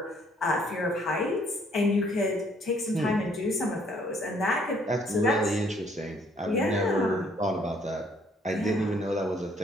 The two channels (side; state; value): both; normal; correlation 0.64